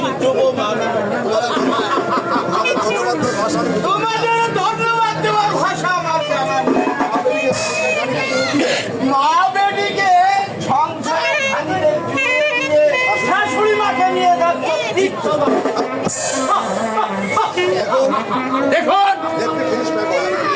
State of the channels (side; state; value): both; identical; correlation 1.00